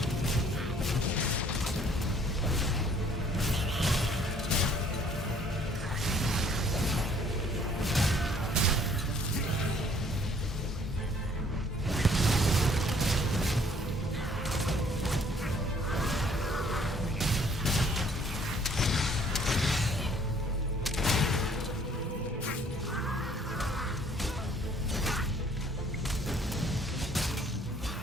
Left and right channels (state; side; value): normal; both; correlation 0.59